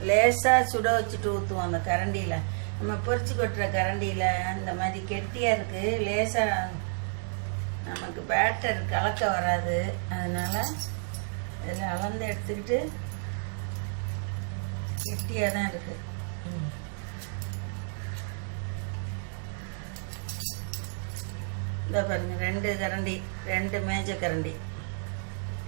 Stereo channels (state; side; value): silent; left; digital silence